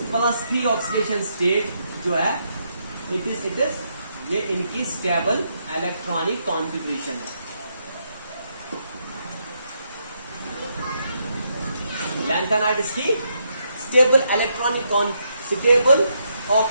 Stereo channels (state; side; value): inverted; both; correlation -0.78